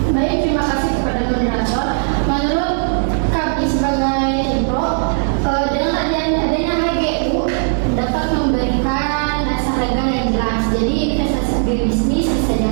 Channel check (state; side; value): silent; left; digital silence